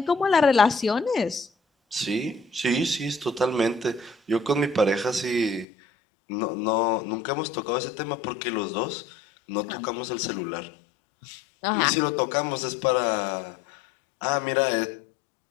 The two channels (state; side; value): drops out; right; at 5.7 s